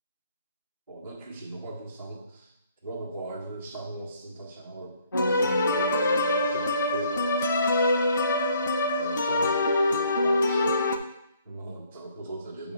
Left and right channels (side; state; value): both; inverted; correlation -0.64